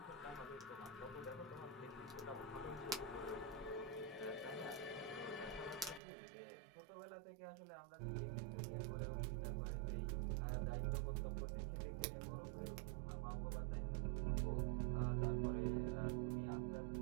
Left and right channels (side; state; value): left; drops out; at 6.0 s